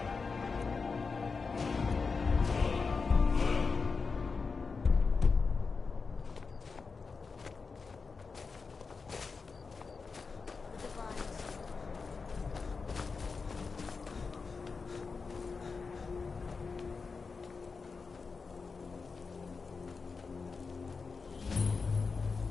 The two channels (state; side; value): quieter; right; 4.7 dB